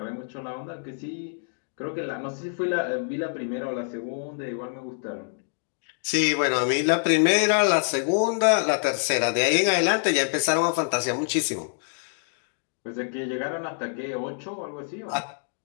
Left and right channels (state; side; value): silent; right; digital silence